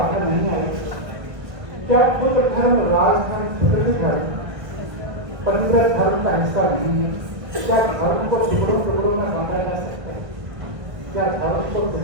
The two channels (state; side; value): late; left; 1.5 ms